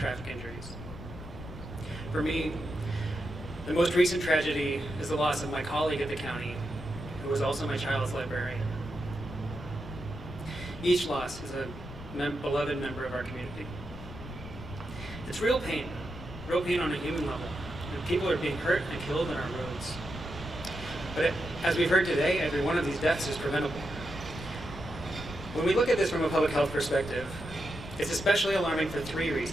injuries. For me, the most recent tragedy is the loss of my colleague at the county, who was also my child's librarian. Each loss is a beloved member of our community. It's real pain on a human level. And people are being hurt and killed on our roads. But as we've heard today, every one of these deaths is preventable. When we look at this from a public health perspective, it's especially alarming for 3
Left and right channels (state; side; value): noise; left; rumble, 12 dB below the sound